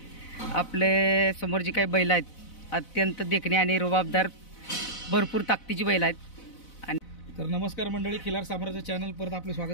आपले समोर जी काही बैल आहेत अत्यंत देखणी आणि रुबाबदार भरपूर ताकदीची बैल आहेत. आणि तर नमस्कार मंडळी, खिलार साम्राज्य चॅनल परत आपलं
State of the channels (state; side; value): late; right; 4.0 ms